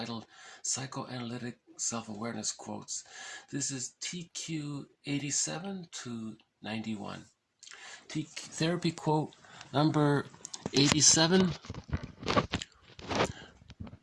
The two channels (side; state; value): both; identical; correlation 1.00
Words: Psychoanalytic Self-Awareness Quotes. This is TQ 87 to 91. Therapy quote number 87.